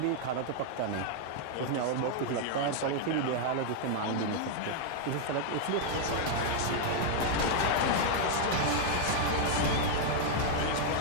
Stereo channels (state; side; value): different; both; correlation 0.00